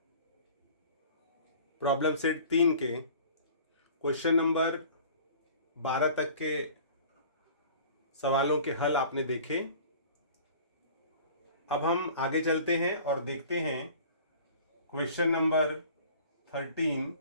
प्रॉब्लम सेट 3 के क्वेश्चन नंबर 12 तक के सवालों के हल आपने देखे। अब हम आगे चलते हैं और देखते हैं क्वेश्चन नंबर 13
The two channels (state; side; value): inverted; both; correlation -0.46